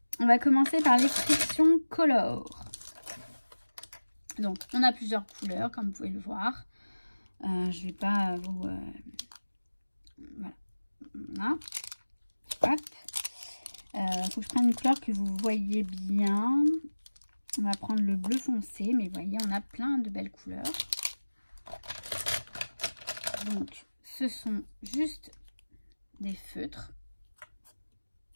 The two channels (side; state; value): both; inverted; correlation -1.00